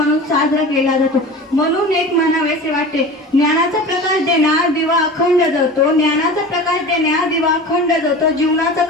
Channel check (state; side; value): normal; both; correlation 0.35